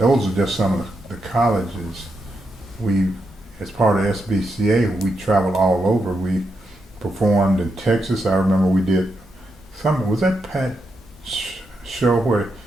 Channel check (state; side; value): normal; both; correlation 0.84